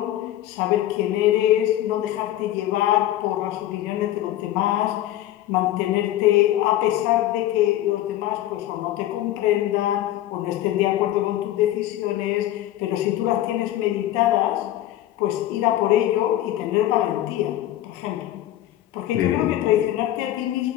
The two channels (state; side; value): quieter; right; 13.6 dB